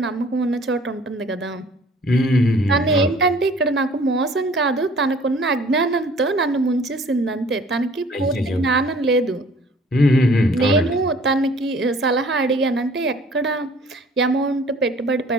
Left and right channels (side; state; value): both; normal; correlation 0.53